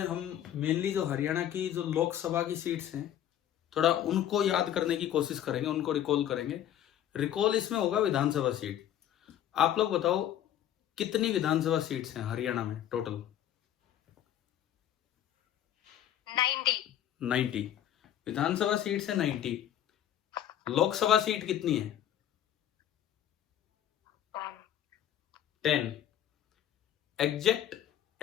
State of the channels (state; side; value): quieter; right; 11.1 dB